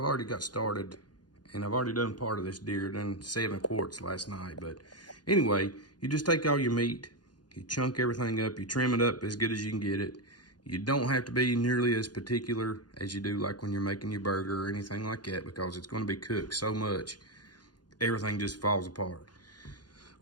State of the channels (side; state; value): right; late; 0.70 ms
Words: already got started, and I've already done part of this deer, done 7 quarts last night. But anyway, you just take all your meat, you chunk everything up, you trim it up as good as you can get it. You don't have to be nearly as particular as you do like when you're making your burger or anything like that, because it's going to be cooked so much, everything just falls apart.